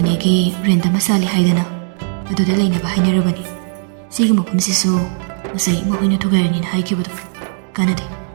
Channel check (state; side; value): silent; left; 68 dB below the other